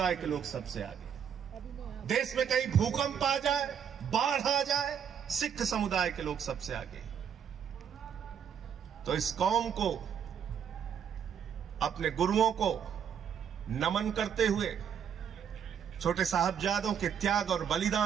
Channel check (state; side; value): quieter; left; 8.1 dB